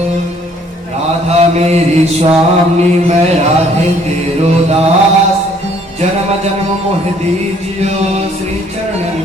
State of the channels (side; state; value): both; normal; correlation 0.61